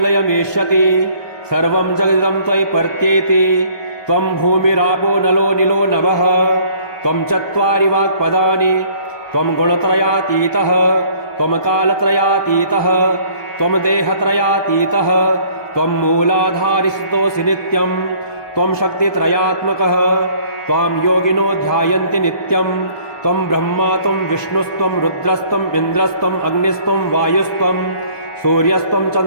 सर्वं जगदिदं त्वयि पर्त्येति। त्वं भूमिरापो नलो निलो नभः, त्वं चत्वारि वाक्पदानि, त्वं गुणत्रयातीतः, त्वं कालत्रयातीतः, त्वं देहत्रयातीतः, त्वं मूलाधारिस्तोऽसि नित्यं, त्वं शक्तित्रयात्मकः, त्वां योगिनो ध्यायन्ति नित्यं। त्वं ब्रह्मा त्वं विष्णुस्त्वं रुद्रस्त्वं इन्द्रस्त्वं अग्निस्त्वं वायुस्त्वं सूर्यस्त्वं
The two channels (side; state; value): right; late; 1.2 ms